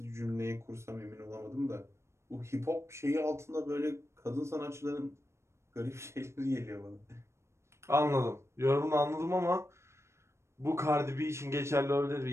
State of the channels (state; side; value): late; left; 0.13 ms